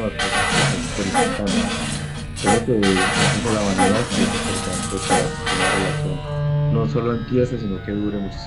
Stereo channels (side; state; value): both; identical; correlation 1.00